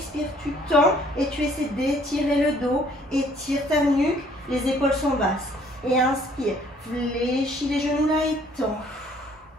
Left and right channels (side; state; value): both; normal; correlation 0.60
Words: tu tends et tu essaies d'étirer le dos. Étire ta nuque, les épaules sont basses. Et inspire, fléchis les genoux là et tends.